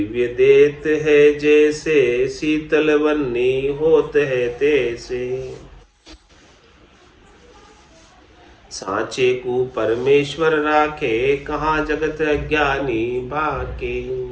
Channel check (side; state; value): both; identical; correlation 1.00